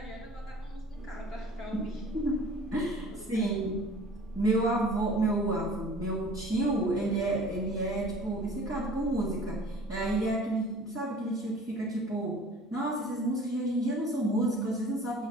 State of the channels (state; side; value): normal; both; correlation 0.46